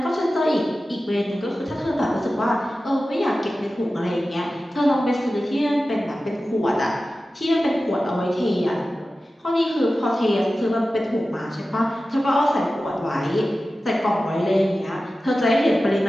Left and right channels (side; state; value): both; normal; correlation 0.95